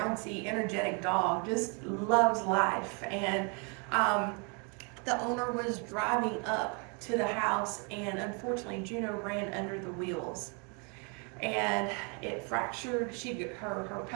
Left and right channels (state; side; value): quieter; left; 35.2 dB